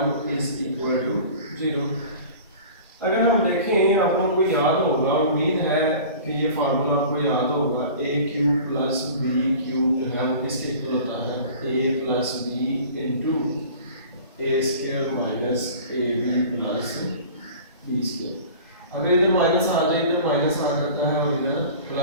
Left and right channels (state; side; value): inverted; both; correlation -0.42